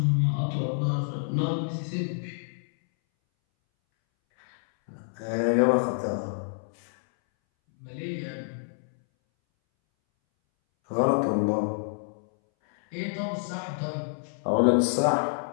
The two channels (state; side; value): silent; right; 60 dB below the other